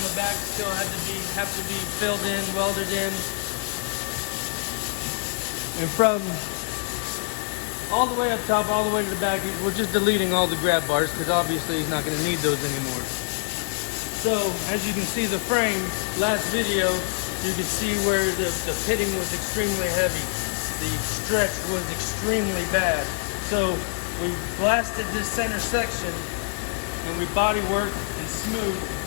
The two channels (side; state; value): right; silent; digital silence